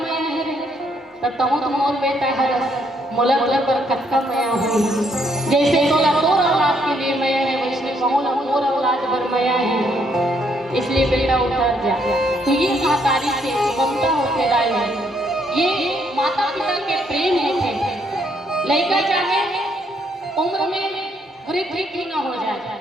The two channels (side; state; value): both; normal; correlation 0.71